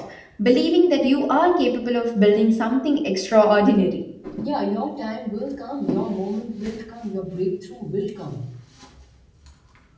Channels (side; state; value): both; identical; correlation 1.00